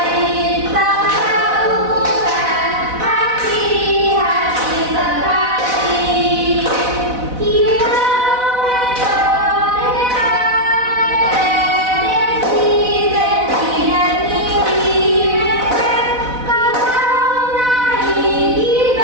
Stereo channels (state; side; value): late; left; 4.0 ms